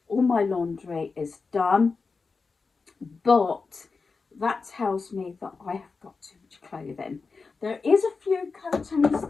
All my laundry is done, but that tells me that I have got too much clothing. There is a few coatings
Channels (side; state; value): right; quieter; 4.5 dB